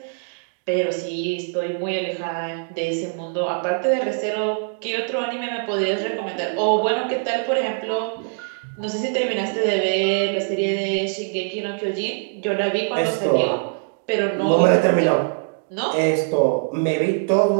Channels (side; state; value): left; silent; digital silence